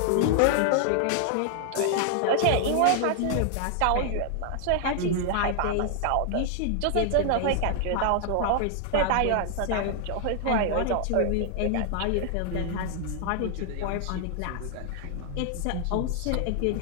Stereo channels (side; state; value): both; different; correlation 0.00